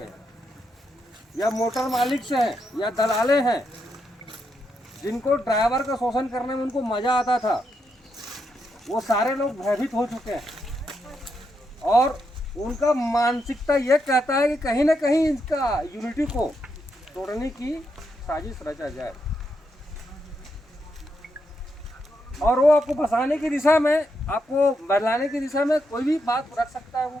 हैं, या मोटर मालिक से हैं या दलाले हैं, जिनको ड्राइवर का शोषण करने में उनको मजा आता था, वो सारे लोग भयभीत हो चुके हैं और उनका मानसिकता ये कहता है कि कहीं ना कहीं इसका यूनिटी को तोड़ने की साजिश रचा जाए और वो आपको फंसाने की दिशा में, आपको बदलाने की दिशा में कोई भी बात रख सकता है, वो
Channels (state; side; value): normal; both; correlation 0.81